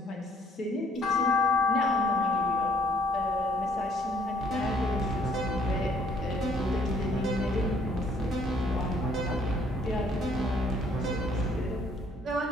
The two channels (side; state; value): both; normal; correlation 0.61